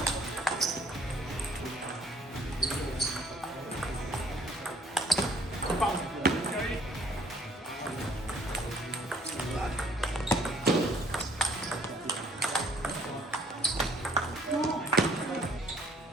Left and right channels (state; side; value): normal; both; correlation 0.60